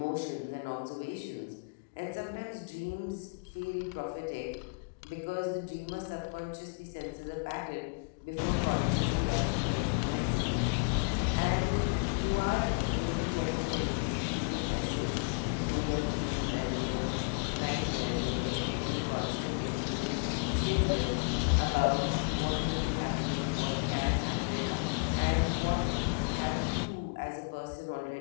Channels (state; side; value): quieter; right; 39.1 dB